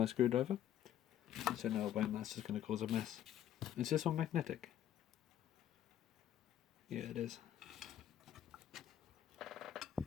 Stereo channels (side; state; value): right; quieter; 11.0 dB